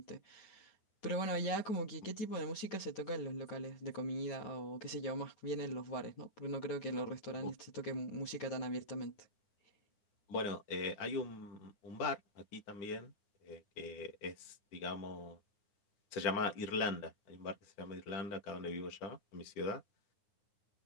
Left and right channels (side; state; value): right; late; 9.6 ms